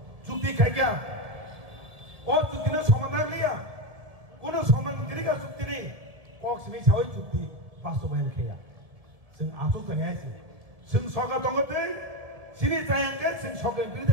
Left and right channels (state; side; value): late; left; 1.7 ms